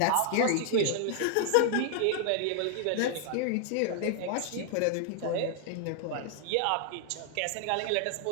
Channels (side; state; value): both; different; correlation 0.00